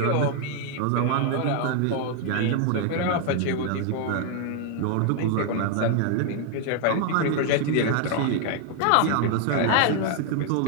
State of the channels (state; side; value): different; both; correlation 0.01